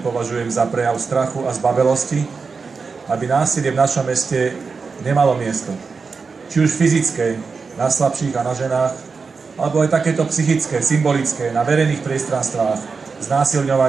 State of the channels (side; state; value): left; quieter; 4.9 dB